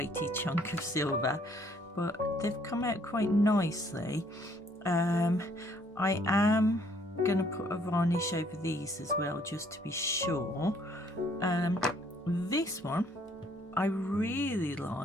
chunk of silver, but they've come out quite nicely. I am going to put a varnish over these as well, just to be sure. This one I really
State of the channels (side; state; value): both; normal; correlation 0.64